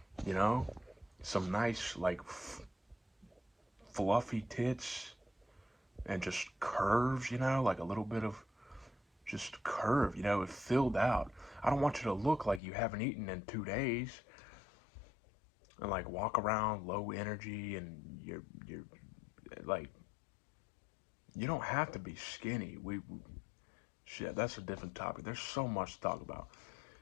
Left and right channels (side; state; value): right; drops out; at 12.6 s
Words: you know? Some nice, like, fluffy tits and just curves, you know? Like a little bit of just curve, you know? It filled out. I don't want you to look like you haven't eaten in 2 days and like walk around low energy and you're like, you don't have to be skinny. Shit, that's a different topic. There's so much to talk about.